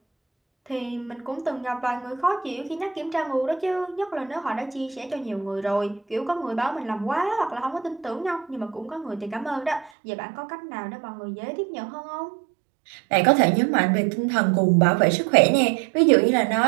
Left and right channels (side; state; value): left; drops out; at 9.9 s